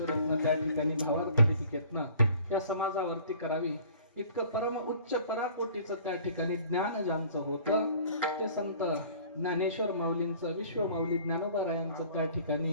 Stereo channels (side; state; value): both; inverted; correlation -0.50